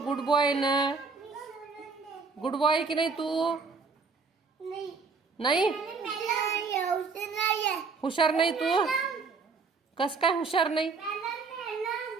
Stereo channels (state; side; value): quieter; left; 4.7 dB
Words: गुड बॉय ना? गुड बॉय आहे की नाही तू? नाही हुशार नाही तू? कस काय हुशार नाही?